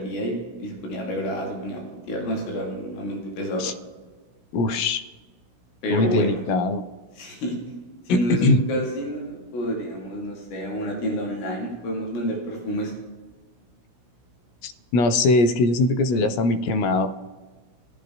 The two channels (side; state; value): right; late; 16 ms